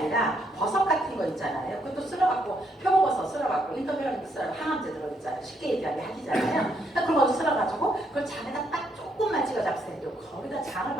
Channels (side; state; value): both; normal; correlation 0.74